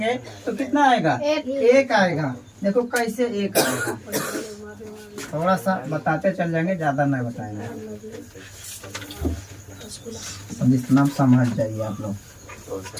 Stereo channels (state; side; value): identical; both; correlation 1.00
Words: तो कितना आएगा, एक आएगा। देखो कैसे एक आएगा, थोड़ा सा बताते चल जाएंगे, ज्यादा नहीं बताएंगे, इतना समझ जाइए आप लोग।